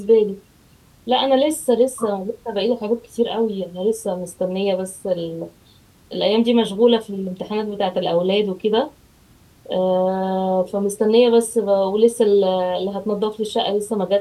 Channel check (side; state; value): both; identical; correlation 1.00